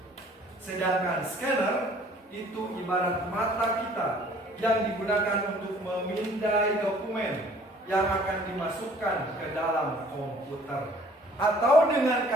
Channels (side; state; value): both; normal; correlation 0.55